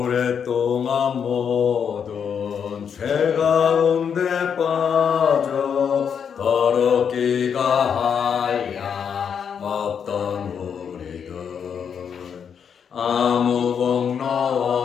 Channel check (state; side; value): quieter; right; 7.3 dB